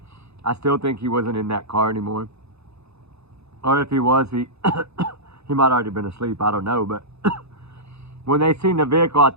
I still think he wasn't in that car anymore. Or if he was, he might already been asleep. I don't know. But when they seen the vehicle, I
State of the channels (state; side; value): late; left; 0.79 ms